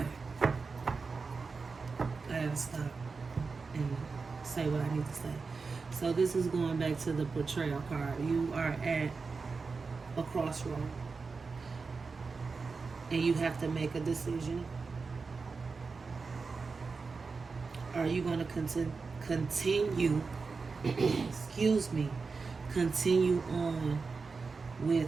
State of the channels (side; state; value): left; quieter; 4.5 dB